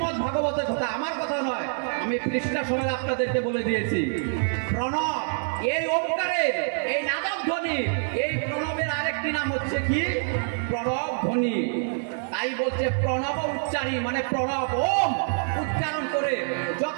ভাগবতের কথা, আমার কথা নয়। আমি পৃষ্ঠা সময় আপনাদেরকে বলে দিয়েছি। প্রণব, এই ওমকারের, এই নাদব ধ্বনি, এই প্রণবের আরেকটি নাম হচ্ছে কি? প্রণব ধ্বনি। তাই বলছে প্রণব উচ্চারী, মানে প্রণব ওম উচ্চারণ করে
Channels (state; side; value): silent; left; digital silence